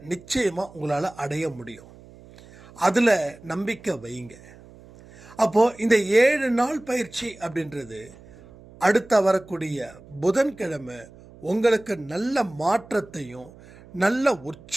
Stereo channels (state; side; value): noise; right; hum, 22 dB below the sound